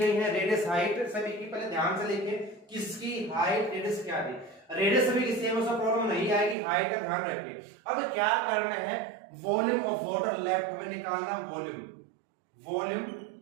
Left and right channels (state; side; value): drops out; left; at 6.6 s